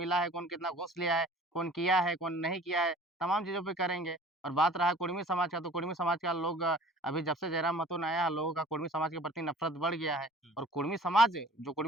है, कौन कितना घूस लिया है, कौन किया है, कौन नहीं किया है, तमाम चीज़ों पे करेंगे। और बात रहा कुड़मी समाज का, तो कुड़मी समाज का लोग अभी जब से जयराम महतो ने आया, लोगों का कुड़मी समाज के प्रति नफ़रत बढ़ गया है हुँ। और कुड़मी समाज जो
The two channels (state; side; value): normal; both; correlation 0.47